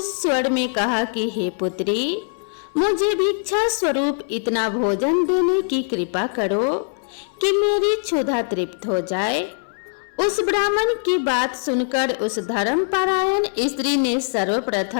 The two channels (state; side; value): silent; right; 64 dB below the other